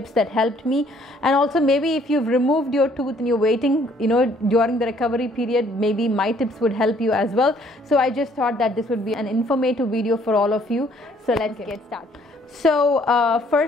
that helped me. And also maybe if you've removed your tooth and you're waiting, during the recovery period, maybe my tips would help you as well. So I just thought that this would be an informative video for all of you. So let's get started. So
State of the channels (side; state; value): both; normal; correlation 0.62